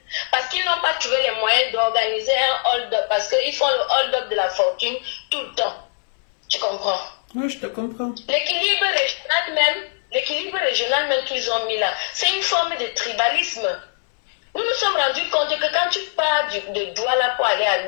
Parce qu'ils n'ont pas trouvé les moyens d'organiser un hold-up, parce qu'ils font le hold-up de la fortune tout le temps. Tu comprends? Oui, je te comprends. L'équilibre régional même qu'ils ont mis là, c'est une forme de tribalisme. Nous nous sommes rendus compte que quand tu pars de Douala pour aller à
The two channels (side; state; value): right; silent; 64 dB below the other